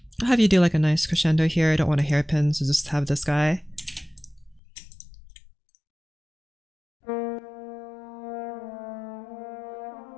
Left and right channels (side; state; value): right; drops out; at 4.6 s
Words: have you do like a nice crescendo here. I don't want a hairpin, so just have this guy.